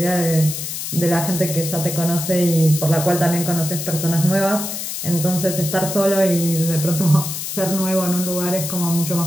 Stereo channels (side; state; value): left; noise; hiss, 5 dB below the sound